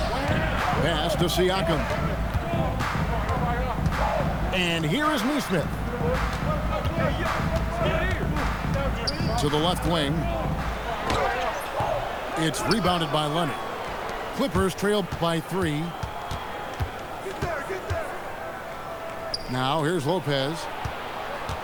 Pass to Siakam. And here is Neesmith. To the left wing. It's rebounded by Leonard. Clippers trailed by 3. Now here's Lopez.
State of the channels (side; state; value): both; identical; correlation 1.00